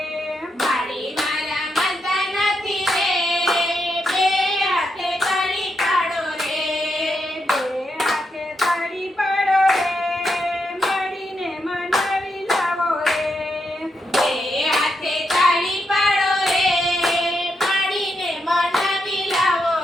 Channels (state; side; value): normal; both; correlation 0.82